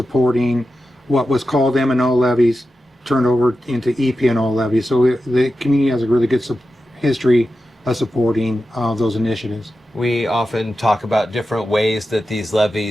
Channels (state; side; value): normal; both; correlation 0.91